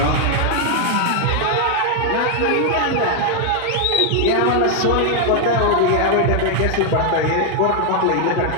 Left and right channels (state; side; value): different; both; correlation 0.00